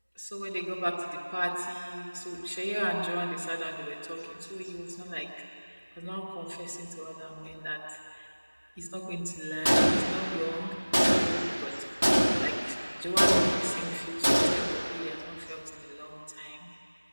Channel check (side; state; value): both; inverted; correlation -1.00